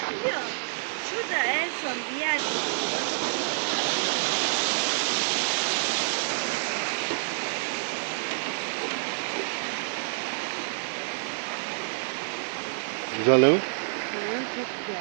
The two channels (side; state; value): left; silent; digital silence